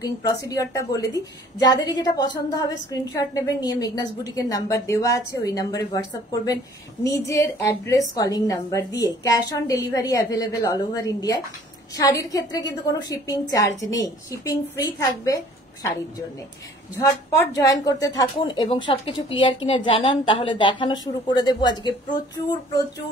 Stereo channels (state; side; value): normal; both; correlation 0.54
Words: প্রসিডিওরটা বলে দিই, যাদেরই যেটা পছন্দ হবে স্ক্রিনশট নেবেন, নিয়ে মেঘনাস বুটিকের নাম্বার দেওয়া আছে, ওই নাম্বারে হোয়াটসঅ্যাপ করবেন নিজের অ্যাড্রেস কলিং নাম্বার দিয়ে। Cash on delivery available all over ইন্ডিয়ায়। শাড়ির ক্ষেত্রে কিন্তু কোনো শিপিং চার্জ নেই, শিপিং ফ্রি থাকবে শাড়ির জন্য। ঝটপট জয়েন করতে থাকুন এবং সবকিছু ক্লিয়ার কিনা জানান, তাহলে দেখানো শুরু করে দেবো। আজকে প্রচুর